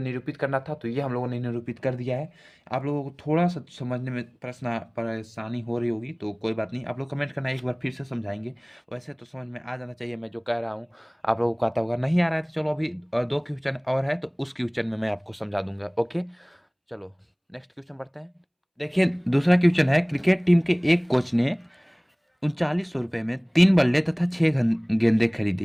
करना था, तो ये हम लोगों ने निरूपित कर दिया है। आप लोगों को थोड़ा सा समझने में परेशानी हो रही होगी, तो कोई बात नहीं, आप लोग कमेंट करना, एक बार फिर से समझाएंगे। वैसे तो समझ में आ जाना चाहिए मैं जो कह रहा हूँ। आप लोगों को आता होगा, नहीं आ रहा है तो चलो अभी 2 क्वेश्चन और है, तो उस क्वेश्चन में मैं आपको समझा दूंगा। ओके, चलो नेक्स्ट क्वेश्चन बढ़ते हैं। देखिए दूसरा क्वेश्चन है, क्रिकेट टीम के एक कोच ने 3900 रुपये में 3 बल्ले तथा 6 गेंदें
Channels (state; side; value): identical; both; correlation 1.00